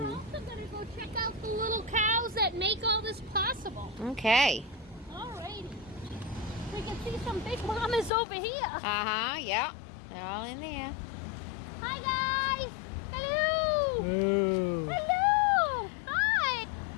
also going to go check out the little cows that make all this possible. Okay. Alrighty. We can see some big mamas over here. Uh-huh, yeah. They're all in there. Hi guys! Hello! Ooh. Hello! Hi!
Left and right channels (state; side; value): drops out; right; at 8.1 s